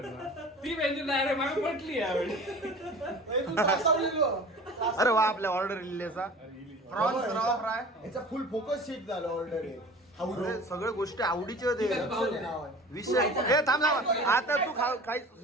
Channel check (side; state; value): both; normal; correlation 0.41